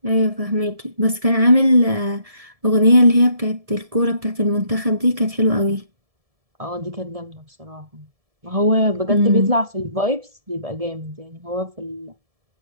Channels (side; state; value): left; late; 1.7 ms